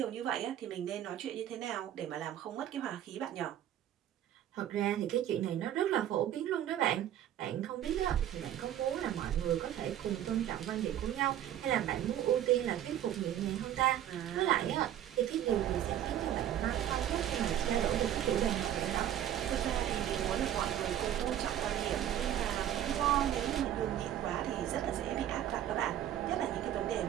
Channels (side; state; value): left; quieter; 11.3 dB